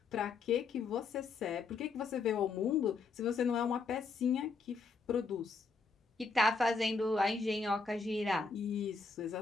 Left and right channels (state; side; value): quieter; right; 4.5 dB